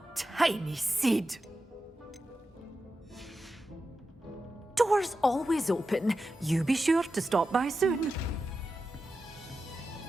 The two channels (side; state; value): both; normal; correlation 0.91